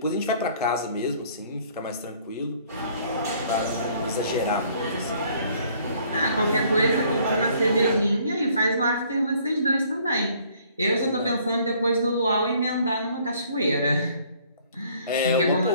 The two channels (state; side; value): inverted; both; correlation -0.60